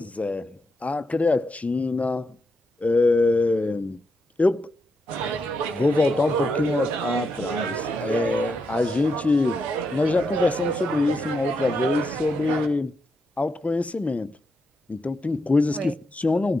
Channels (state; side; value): normal; both; correlation 0.82